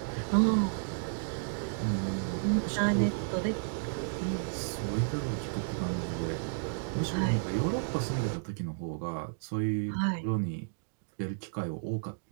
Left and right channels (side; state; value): left; silent; digital silence